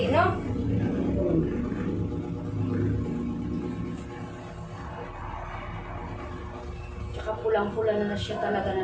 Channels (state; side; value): identical; both; correlation 1.00